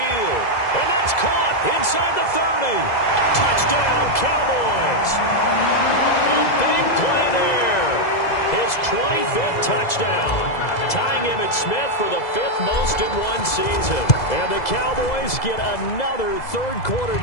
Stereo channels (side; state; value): right; late; 2.0 ms